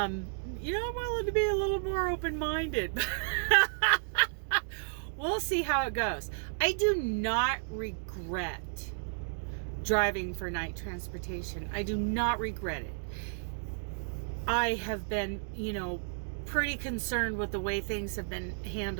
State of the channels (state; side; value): silent; left; digital silence